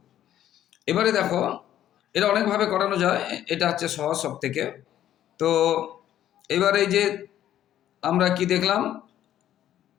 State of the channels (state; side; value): quieter; right; 11.7 dB